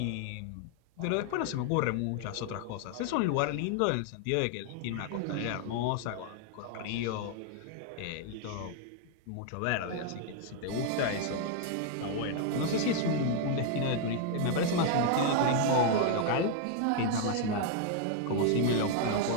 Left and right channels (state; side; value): different; both; correlation 0.00